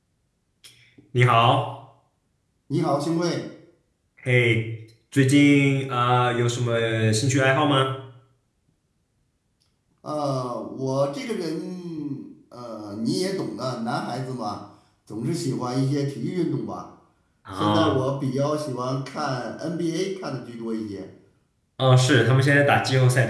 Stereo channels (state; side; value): identical; both; correlation 1.00